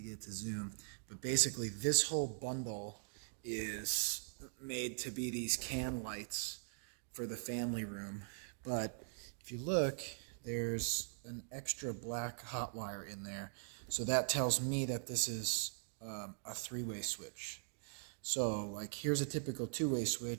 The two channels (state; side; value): silent; left; digital silence